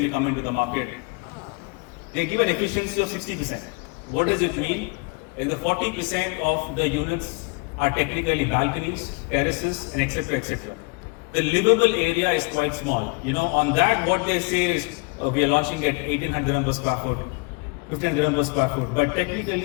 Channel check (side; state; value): right; quieter; 30.8 dB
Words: come into the market, they give an efficiency of 60%. What does it mean? In the 40% of the units are technically balconies, terraces, and etc. etc. The livable area is quite small. You know, on that, what they say is we are launching at 1800 per square foot, 1500 per square foot. But